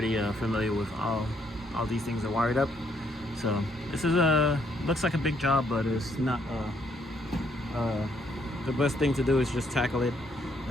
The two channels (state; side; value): normal; both; correlation 0.71